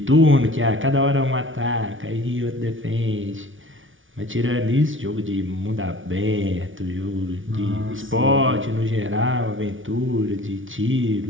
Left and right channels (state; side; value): late; left; 0.57 ms